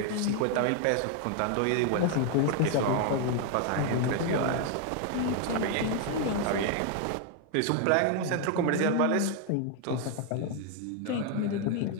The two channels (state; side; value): different; both; correlation 0.00